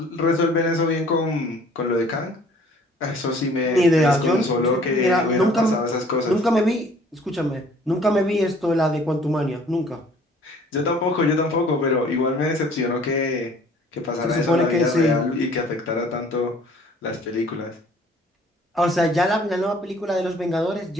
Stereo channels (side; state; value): both; normal; correlation 0.55